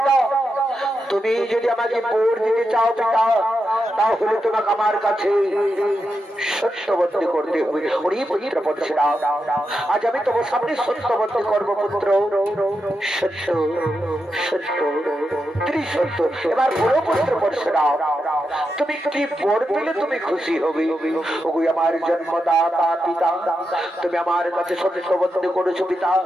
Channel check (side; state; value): both; normal; correlation 0.87